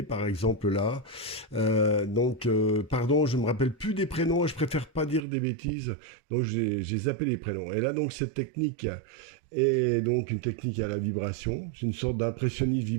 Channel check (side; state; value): left; drops out; at 5.2 s